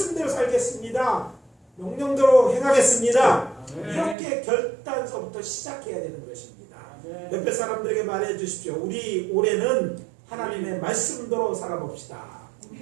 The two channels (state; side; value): drops out; left; at 4.2 s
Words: 살겠습니다. 명령대로 행하겠습니다. 이렇게 결단서부터 시작해야 되는 것입니다. 옆에 사람들에게 말해 주십시오. 우리 올해는 하나님의 말씀대로 살아봅시다.